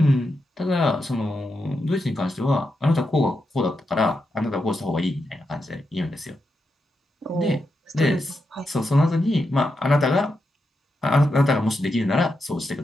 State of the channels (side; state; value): both; normal; correlation 0.86